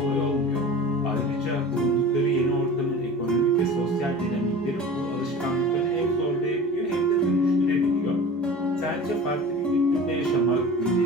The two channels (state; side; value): normal; both; correlation 0.38